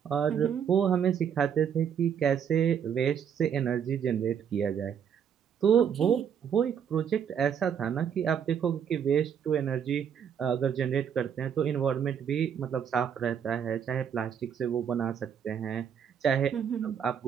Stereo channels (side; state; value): left; quieter; 8.0 dB